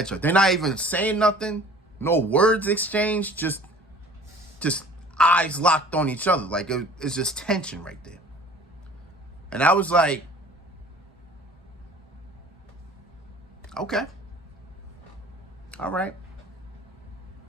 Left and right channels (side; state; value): both; normal; correlation 0.48